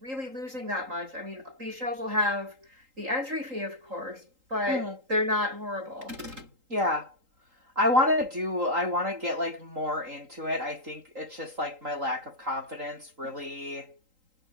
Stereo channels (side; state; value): left; late; 3.8 ms